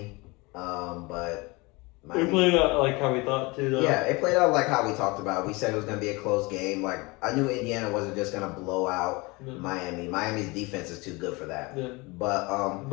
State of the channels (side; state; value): right; quieter; 25.1 dB